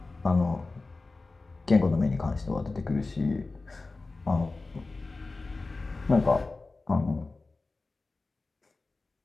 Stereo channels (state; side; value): quieter; right; 3.5 dB